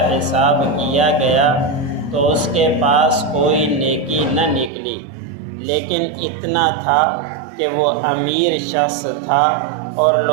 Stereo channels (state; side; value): drops out; left; at 4.7 s